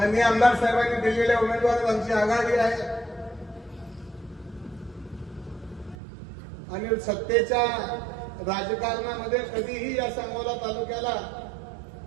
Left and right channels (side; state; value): left; drops out; at 6.0 s